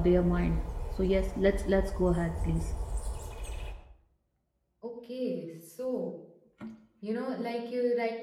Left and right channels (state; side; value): identical; both; correlation 1.00